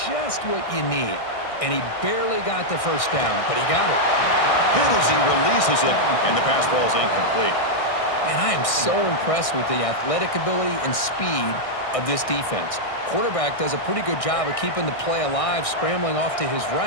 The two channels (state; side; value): late; right; 1.6 ms